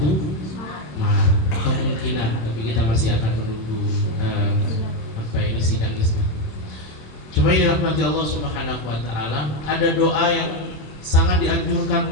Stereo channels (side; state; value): right; late; 27 ms